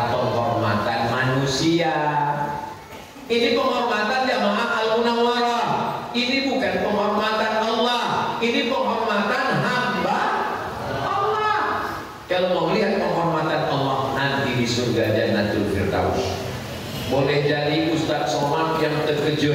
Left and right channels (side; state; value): both; identical; correlation 1.00